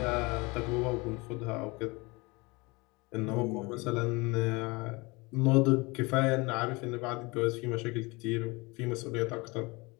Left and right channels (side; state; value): right; quieter; 25.6 dB